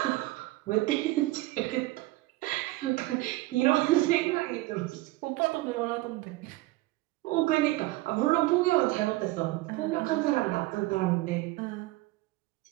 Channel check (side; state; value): left; quieter; 19.2 dB